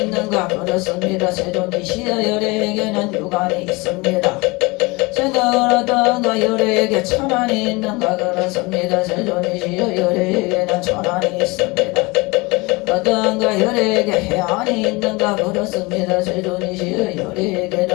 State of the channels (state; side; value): quieter; right; 24.9 dB